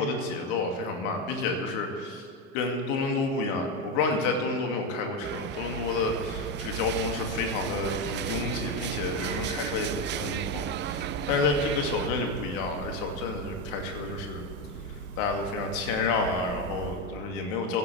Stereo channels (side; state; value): both; normal; correlation 0.11